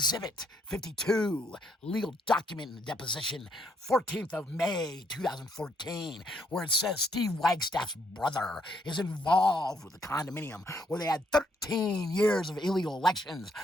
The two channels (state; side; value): normal; both; correlation 0.72